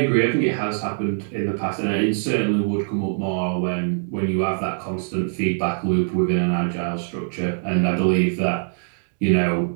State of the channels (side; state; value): left; silent; digital silence